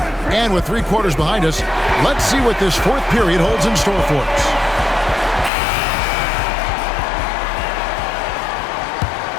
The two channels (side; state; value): right; drops out; at 5.5 s